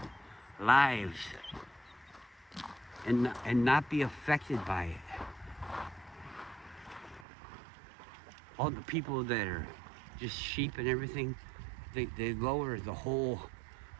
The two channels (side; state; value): left; drops out; at 7.2 s